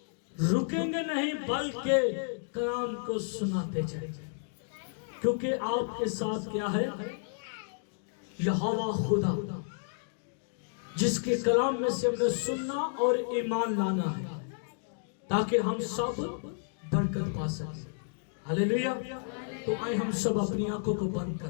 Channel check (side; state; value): right; silent; digital silence